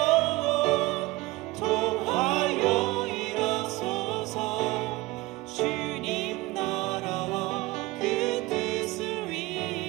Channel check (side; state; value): left; quieter; 20.7 dB